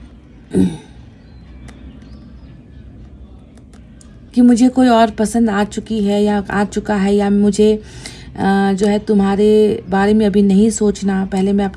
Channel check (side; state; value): both; identical; correlation 1.00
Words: कि मुझे कोई और पसंद आ चुकी है या आ चुका है, या मुझे जो है तुम्हारे बारे में अभी नहीं सोचना, पहले मैं